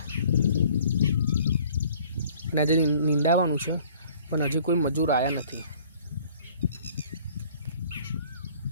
અને આજે નીંદાવાનું છે પણ હજી કોઈ મજૂર આવ્યા નથી।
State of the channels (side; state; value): both; inverted; correlation -0.54